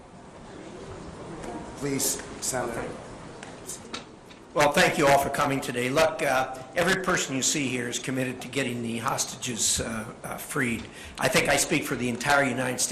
Please, Senator. Okay. Well, thank you all for coming today. Look, every person you see here is committed to getting the hostages freed. I think I speak for the entire United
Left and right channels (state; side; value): identical; both; correlation 1.00